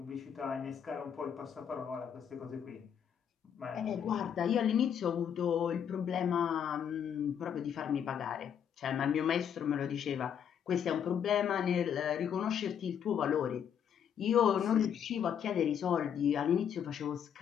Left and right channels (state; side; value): quieter; right; 8.5 dB